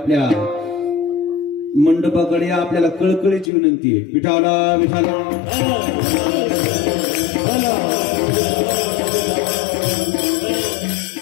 मंडपाकडे या, आपल्याला कळकळीची विनंती आहे। विठाला विठाला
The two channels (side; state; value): right; drops out; at 3.5 s